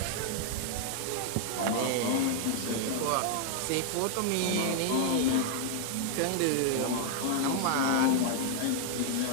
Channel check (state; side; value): different; both; correlation 0.00